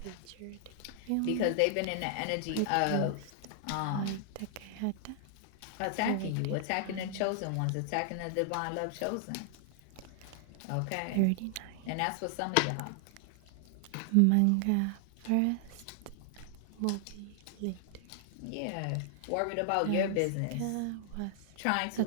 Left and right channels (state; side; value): different; both; correlation 0.00